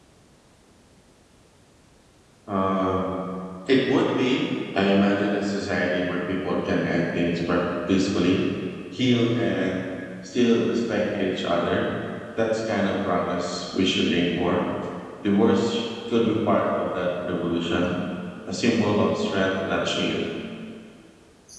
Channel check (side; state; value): both; identical; correlation 1.00